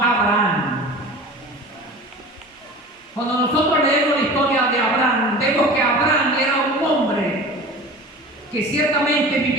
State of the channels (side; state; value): both; normal; correlation 0.37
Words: Abraham. Cuando nosotros leemos la historia de Abraham, vemos que Abraham era un hombre que ciertamente